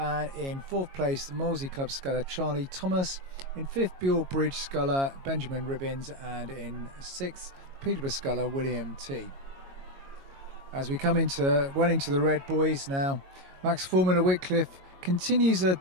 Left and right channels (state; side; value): late; left; 22 ms